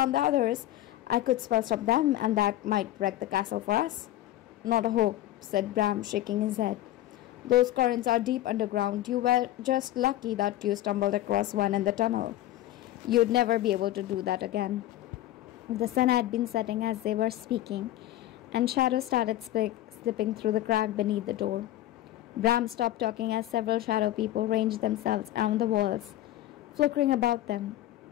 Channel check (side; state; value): right; quieter; 14.2 dB